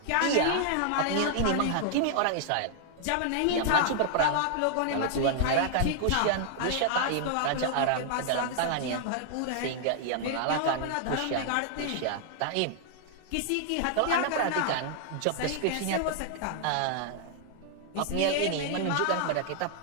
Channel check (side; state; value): both; different; correlation -0.01